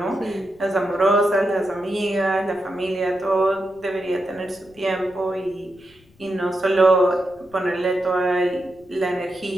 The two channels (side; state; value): left; noise; rumble, 29 dB below the sound